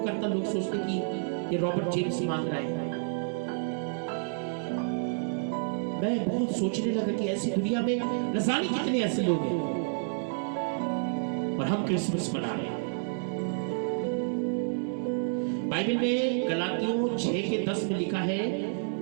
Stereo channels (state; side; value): silent; left; 58 dB below the other